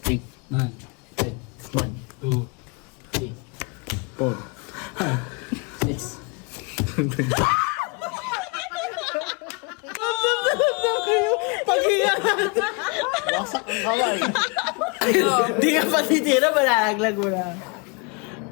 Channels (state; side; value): quieter; right; 32.1 dB